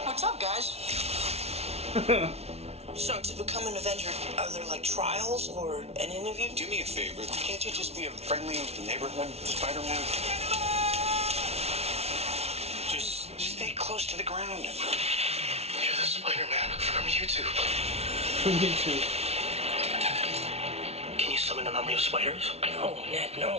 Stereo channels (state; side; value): late; left; 0.31 ms